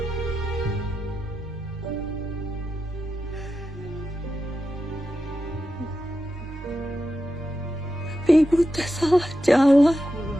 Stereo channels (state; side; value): normal; both; correlation 0.89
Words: Tapi ibu teh salah jalan. Kula